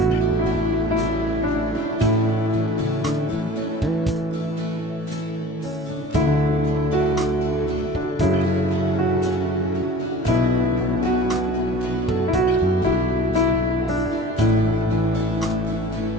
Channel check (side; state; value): both; normal; correlation 0.42